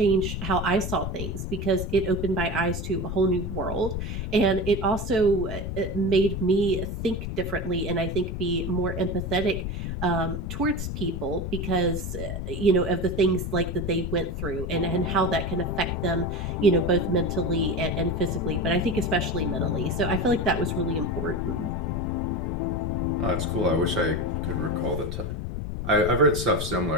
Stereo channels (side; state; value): left; noise; rumble, 4 dB below the sound